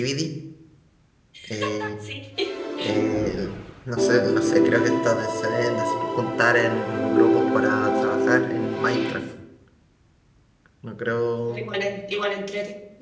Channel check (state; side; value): identical; both; correlation 1.00